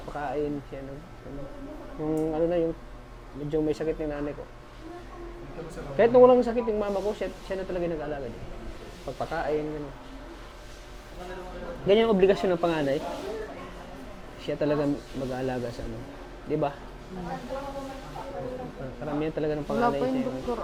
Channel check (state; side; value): identical; both; correlation 1.00